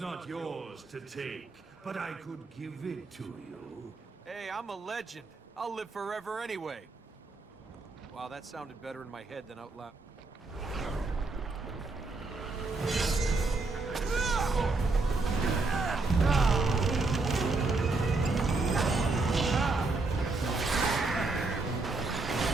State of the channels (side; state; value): left; quieter; 3.5 dB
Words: yours to take, but I could give it to you. Hey, I'm a legend. I'll live forever anyway. Wow, that sounded better in my head than out loud.